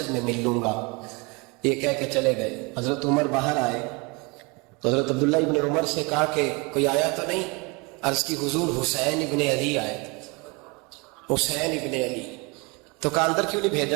میں مل لوں گا. یہ کہہ کے چلے گئے. حضرت عمر باہر آئے تو حضرت عبداللہ ابن عمر سے کہا کہ کوئی آیا تو نہیں؟ عرض کی حضور حسین ابن علی آئے. حسین ابن علی. تو کہا اندر کیوں نہیں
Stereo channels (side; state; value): left; quieter; 28.5 dB